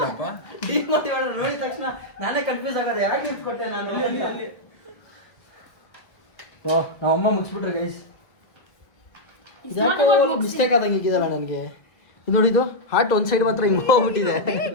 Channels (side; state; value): right; late; 1.7 ms